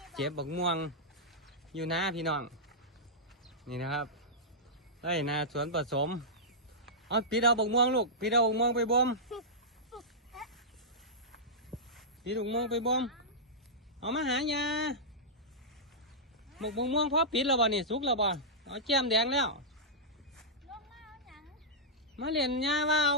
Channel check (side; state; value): both; normal; correlation -0.13